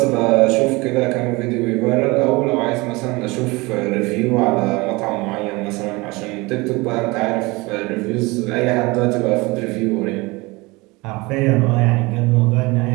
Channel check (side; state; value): left; quieter; 23.7 dB